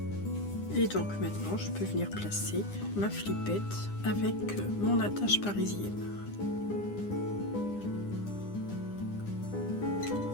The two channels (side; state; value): right; late; 9.9 ms